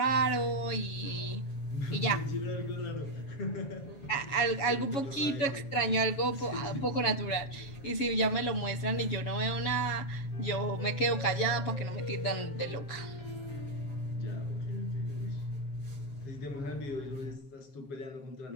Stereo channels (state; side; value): late; right; 7.3 ms